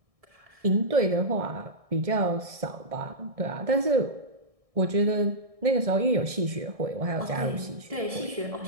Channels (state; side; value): late; left; 1.6 ms